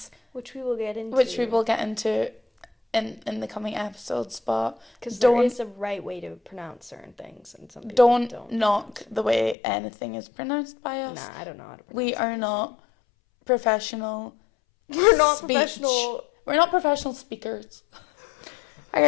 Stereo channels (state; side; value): drops out; right; at 9.6 s